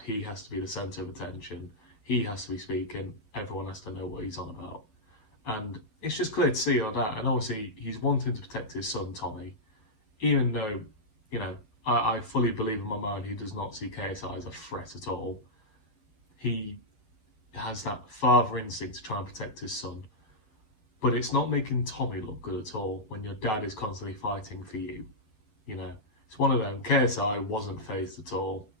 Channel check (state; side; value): late; right; 9.3 ms